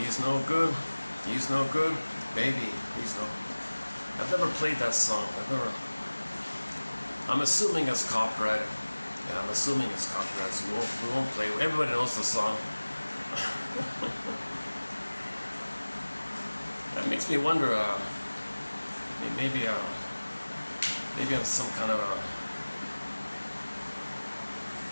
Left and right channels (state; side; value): inverted; both; correlation -1.00